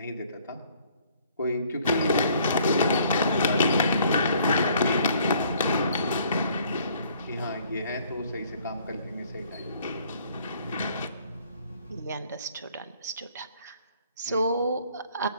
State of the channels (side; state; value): both; inverted; correlation -0.61